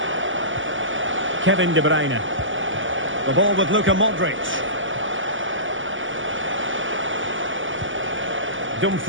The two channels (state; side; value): late; left; 0.57 ms